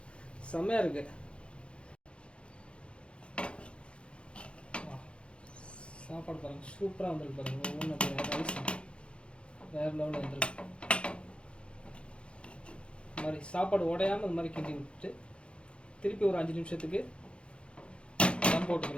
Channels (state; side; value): late; right; 0.057 ms